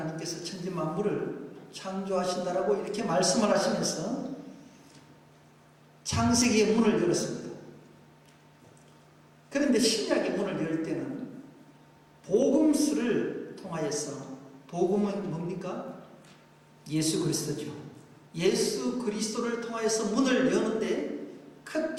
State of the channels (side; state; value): both; identical; correlation 1.00